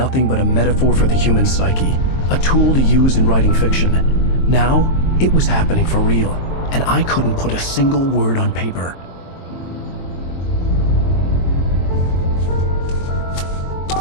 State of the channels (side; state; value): right; late; 22 ms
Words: but a metaphor for the human psyche, a tool to use in writing fiction. Now, it was happening for real, and I couldn't put a single word on paper.